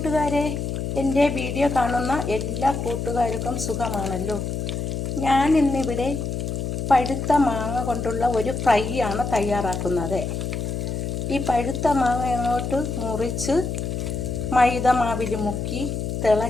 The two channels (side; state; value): left; noise; hum, 3 dB below the sound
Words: എൻ്റെ video കാണുന്ന എല്ലാ കൂട്ടുകാർക്കും സുഖമാണല്ലോ. ഞാൻ ഇന്നിവിടെ പഴുത്ത മാങ്ങ കൊണ്ടുള്ള ഒരു ഫ്രൈ ആണ് തയ്യാറാക്കുന്നത്. ഈ പഴുത്ത മാങ്ങ അങ്ങോട്ട് മുറിച്ച് മൈദ മാവിൽ മുക്കി